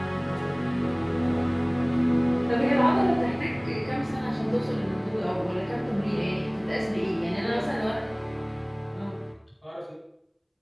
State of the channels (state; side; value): identical; both; correlation 1.00